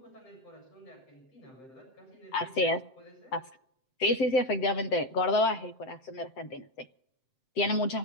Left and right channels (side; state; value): right; late; 7.7 ms